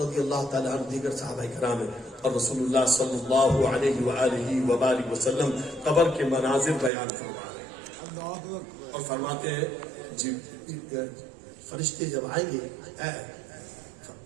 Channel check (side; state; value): left; drops out; at 6.9 s